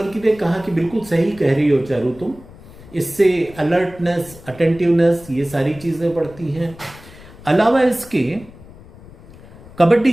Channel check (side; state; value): left; noise; rumble, 20 dB below the sound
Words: ने कहा कि बिल्कुल सही कह रही हो चारू तुम, इससे अलर्टनेस, अटेंटिवनेस, ये सारी चीज़ें बढ़ती हैं। अलावा इसके कबड्डी